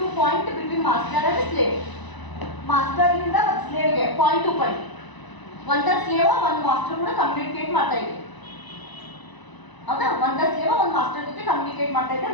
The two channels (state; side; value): late; right; 1.0 ms